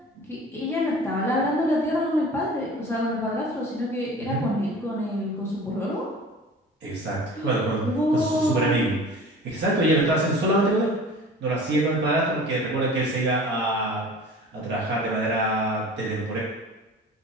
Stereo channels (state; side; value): normal; both; correlation 0.42